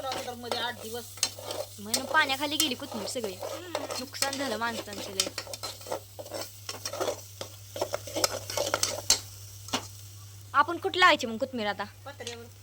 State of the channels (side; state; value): both; identical; correlation 1.00